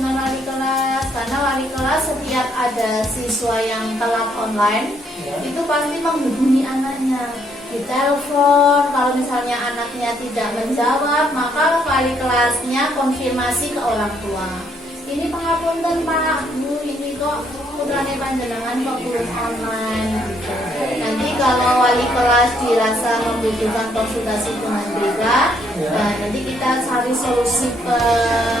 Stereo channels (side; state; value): both; normal; correlation 0.70